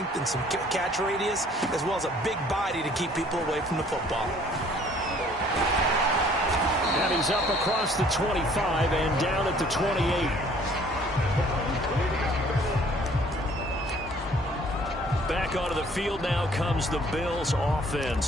and some catch radius, as well as a big body to keep people away from the football. And he's up across the 25 and down at the 28. Back onto the field now comes the Bills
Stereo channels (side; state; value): both; normal; correlation 0.57